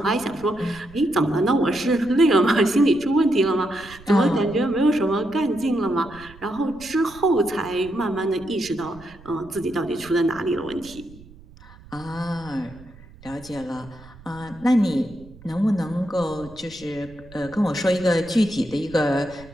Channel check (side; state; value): right; noise; rumble, 21 dB below the sound